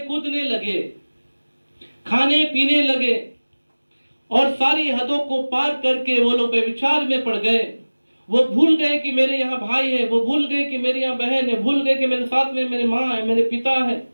कूदने लगे, खाने पीने लगे, और सारी हदों को पार करके वो लोग व्यभिचार में पड़ गए। वो भूल गए कि मेरे यहाँ भाई है, वो भूल गए कि मेरे यहाँ बहन है, भूल गए कि मेरे साथ में मेरी माँ है, मेरे पिता है।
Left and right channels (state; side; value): inverted; both; correlation -1.00